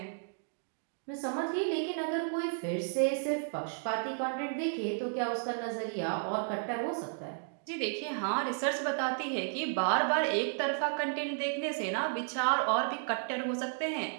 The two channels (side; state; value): left; silent; digital silence